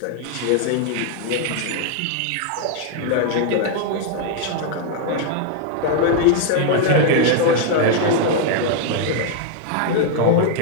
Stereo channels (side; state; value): both; different; correlation 0.00